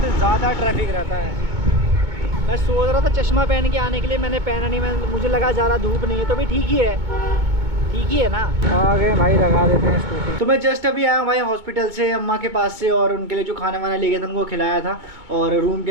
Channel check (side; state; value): left; late; 2.2 ms